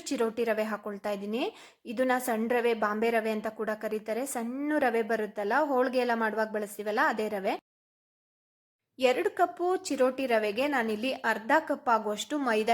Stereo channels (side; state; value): both; identical; correlation 1.00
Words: ಚಿರೋಟಿ ರವೆ ಹಾಕೊಳ್ತಾ ಇದ್ದೀನಿ. ಇದನ್ನ ಸಣ್ಣ ರವೆ, ಬಾಂಬೆ ರವೆ ಅಂತ ಕೂಡ ಕರೀತಾರೆ. ಸಣ್ಣ ರವೆ ಬರುತ್ತಲ್ಲ, ಹೋಳಿಗೆ ಎಲ್ಲ ಮಾಡುವಾಗ ಬಳಸ್ತೀವಲ್ಲ, ಅದೇ ರವೆ. 2 ಕಪ್ಪು ಚಿರೋಟಿ ರವೆಗೆ ನಾನಿಲ್ಲಿ ಅರ್ಧ ಕಪ್ ಆಗುವಷ್ಟು